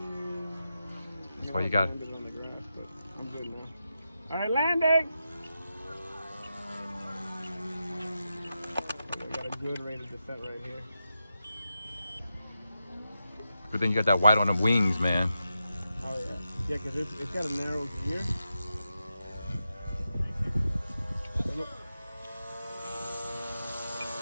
That's why you got it. I'm good now. All right, landing. I got a good rate of descent right here. Good thing you got that white on the wings, man. Oh yeah, yeah, because it's got a narrow gear.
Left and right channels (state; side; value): inverted; both; correlation -0.88